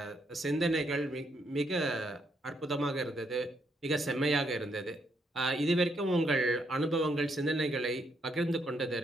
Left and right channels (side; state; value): both; normal; correlation 0.75